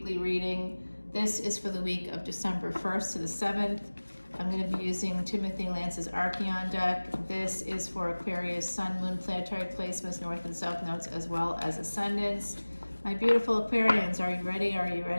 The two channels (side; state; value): both; inverted; correlation -1.00